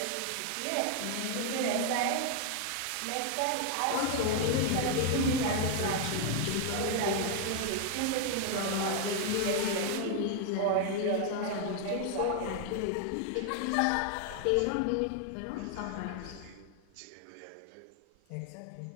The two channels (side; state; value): both; different; correlation 0.00